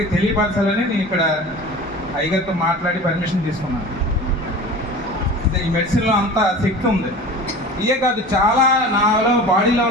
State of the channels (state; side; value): normal; both; correlation 0.37